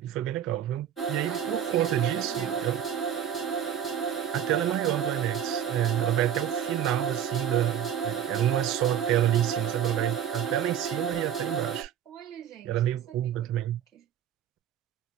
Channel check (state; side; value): quieter; left; 9.5 dB